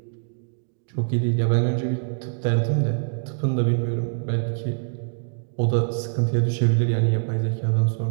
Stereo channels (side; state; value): left; silent; digital silence